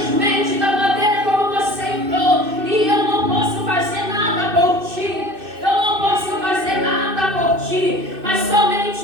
da maneira como você entrou. E eu não posso fazer nada por ti, eu não posso fazer nada por ti, mas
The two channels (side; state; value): left; late; 2.6 ms